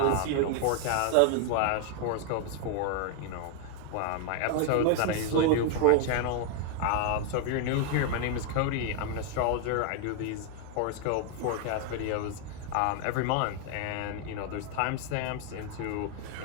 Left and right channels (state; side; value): different; both; correlation 0.00